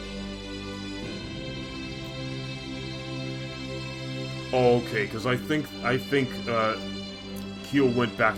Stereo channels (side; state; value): both; identical; correlation 1.00